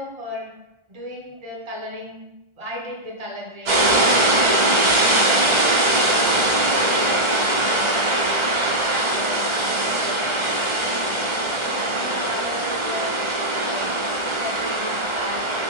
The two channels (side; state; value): left; late; 1.4 ms